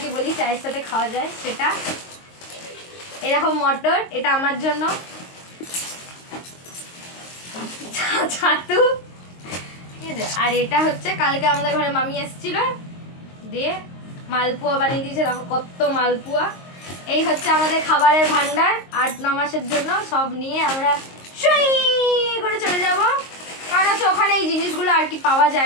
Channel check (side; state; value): right; late; 22 ms